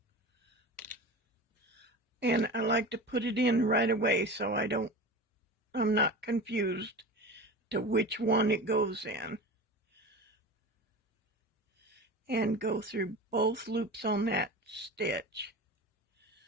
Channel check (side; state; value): both; normal; correlation 0.31